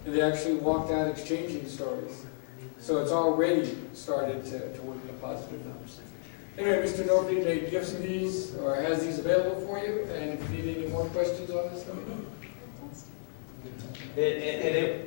And they actually walked out exchanging stories. So it's already started to work in a positive manner. Anyway, Mr. Norby made gifts of these, or has these available for you, and if you need any more questions on this, let me know.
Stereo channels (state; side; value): silent; right; digital silence